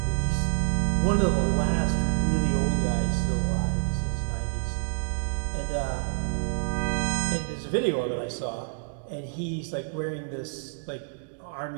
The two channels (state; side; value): silent; left; digital silence